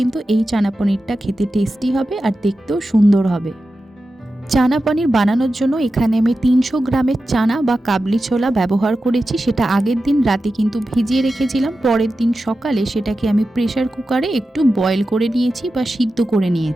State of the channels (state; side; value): normal; both; correlation 0.92